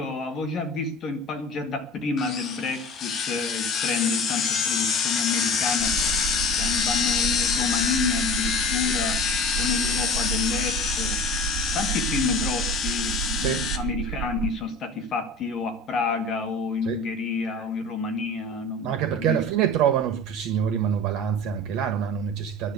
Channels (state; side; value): normal; both; correlation 0.38